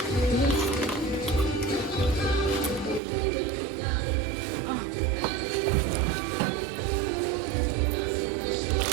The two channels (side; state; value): left; drops out; at 3.0 s